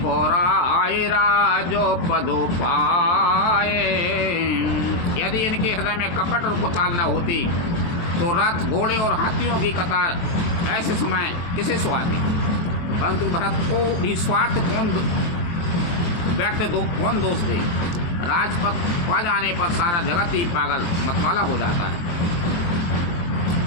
पौराए राजो पदो पाए। यदि इनके हृदय में कपट और कुचाल न होती तो रथ घोड़े और हाथियों की कतार ऐसे समय किसे सुहाती। परंतु भरत को भी स्वार्थ कौन दोष दे। राजपथ पा जाने पर सारा जगत ही पागल मतवाला हो जाता है।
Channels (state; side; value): late; right; 23 ms